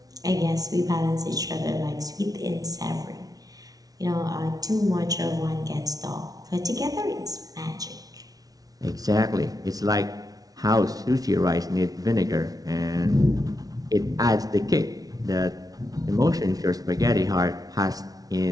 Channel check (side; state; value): left; late; 0.18 ms